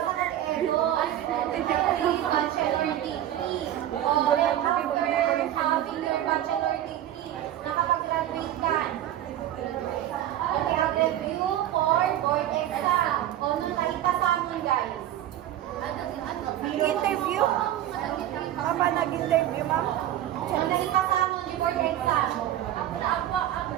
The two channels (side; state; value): left; quieter; 12.4 dB